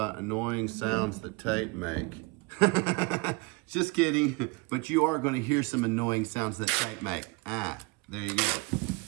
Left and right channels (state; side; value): quieter; left; 27.2 dB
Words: annoying sounds that tape make. Just kidding, but you are going to hear some annoying sounds that tape make. There you go.